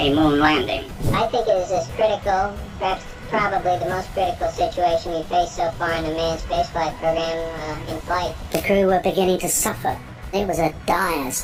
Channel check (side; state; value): both; identical; correlation 1.00